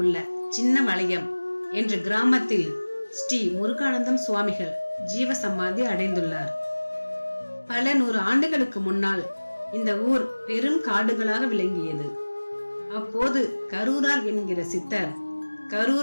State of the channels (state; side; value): inverted; both; correlation -1.00